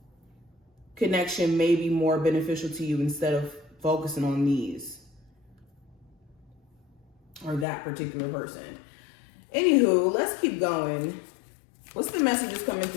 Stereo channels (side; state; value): right; drops out; at 7.7 s